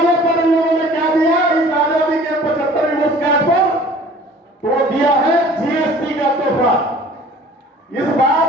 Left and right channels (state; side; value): normal; both; correlation 0.49